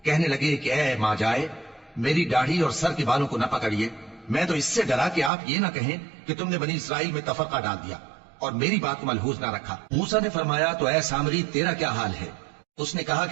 کہنے لگے کہ اے ماں جائے، میری داڑھی اور سر کے بالوں کو نہ پکڑیے، میں تو اس سے ڈرا کہ آپ یہ نہ کہیں کہ تم نے بنی اسرائیل میں تفرقہ ڈال دیا اور میری بات کو ملحوظ نہ رکھا۔ موسیٰ نے فرمایا تو اے سامری، تیرا کیا حال ہے؟ اس نے کہا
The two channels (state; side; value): drops out; left; at 5.3 s